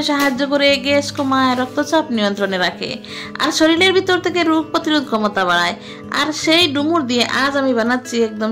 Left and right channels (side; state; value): both; identical; correlation 1.00